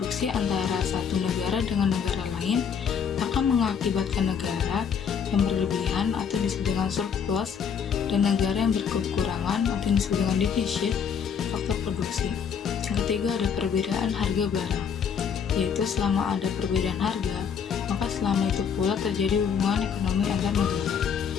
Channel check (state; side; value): quieter; right; 7.1 dB